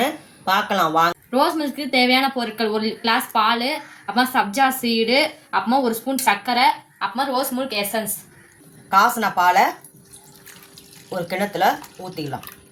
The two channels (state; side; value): identical; both; correlation 1.00